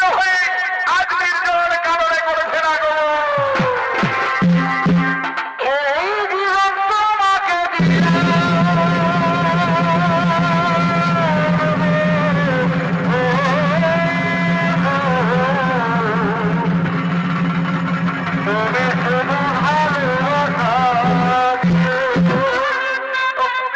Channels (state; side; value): identical; both; correlation 1.00